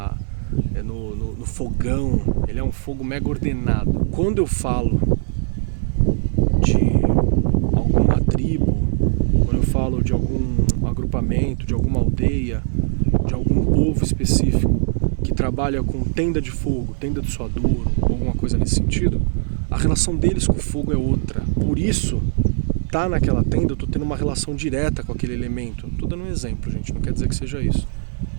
fogão, ele é um fogo mega ordenado. Quando eu falo de alguma tribo, quando eu falo de algum agrupamento, de alguma aldeia, de algum povo específico que trabalha com tenda de fogo, tenda de suadouro, alguma coisa nesse sentido, a relação deles com o fogo é outra. Por isso, tá naquela tenda, eu tô tendo uma relação direta com aquele elemento. Tô dando um exemplo, gente, não quer dizer que seja isso.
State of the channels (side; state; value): left; silent; digital silence